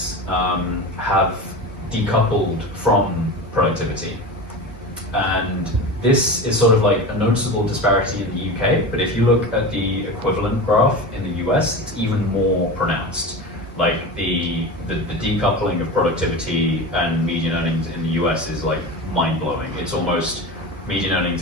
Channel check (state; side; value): normal; both; correlation 0.27